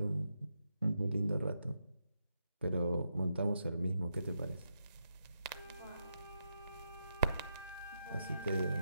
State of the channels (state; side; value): inverted; both; correlation -0.83